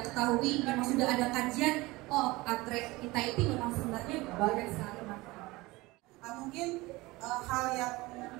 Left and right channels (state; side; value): quieter; left; 21.4 dB